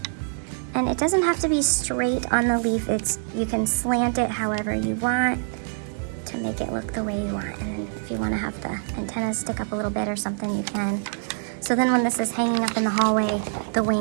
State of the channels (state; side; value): silent; left; digital silence